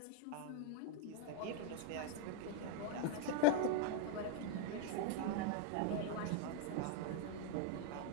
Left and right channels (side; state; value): both; different; correlation 0.00